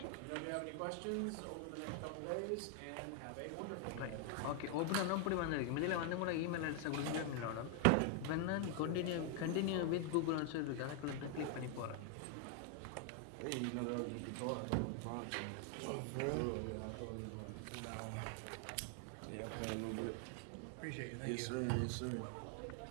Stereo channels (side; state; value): both; different; correlation 0.00